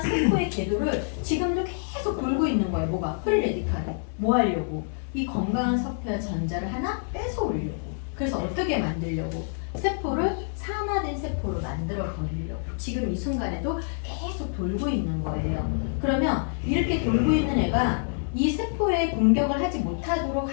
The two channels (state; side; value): silent; right; digital silence